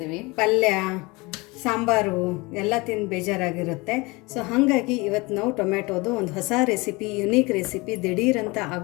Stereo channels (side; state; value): right; quieter; 24.8 dB